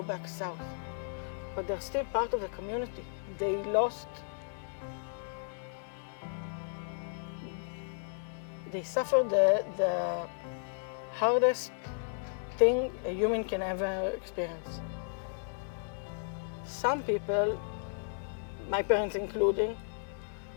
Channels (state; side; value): silent; right; digital silence